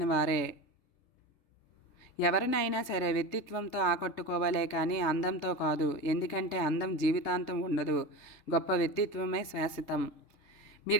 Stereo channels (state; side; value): late; right; 3.3 ms